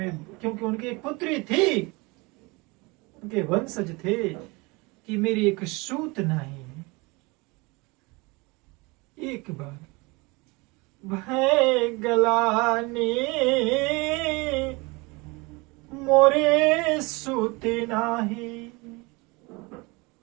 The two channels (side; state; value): left; quieter; 25.9 dB